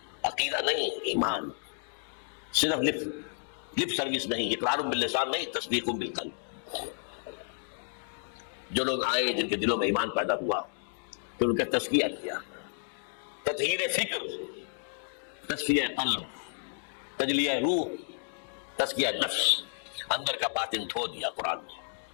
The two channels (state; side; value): silent; right; digital silence